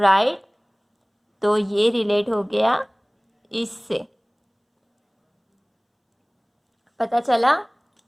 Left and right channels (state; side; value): identical; both; correlation 1.00